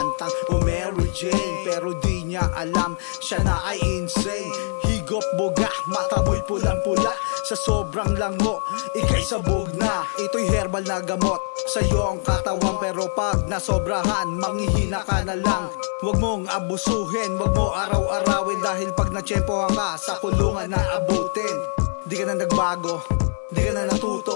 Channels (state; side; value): silent; right; digital silence